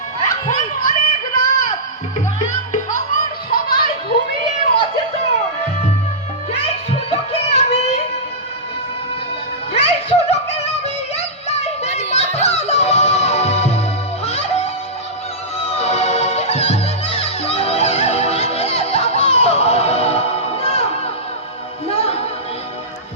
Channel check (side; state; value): both; normal; correlation -0.15